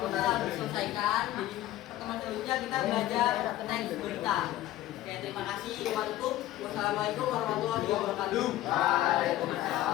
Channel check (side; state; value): right; quieter; 14.5 dB